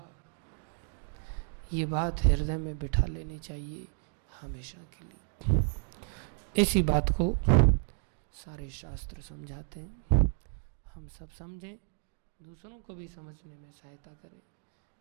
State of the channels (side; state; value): left; silent; digital silence